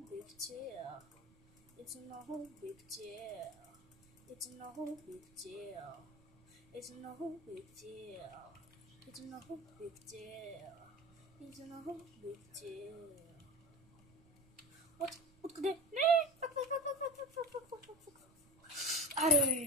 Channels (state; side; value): noise; right; rumble, 27 dB below the sound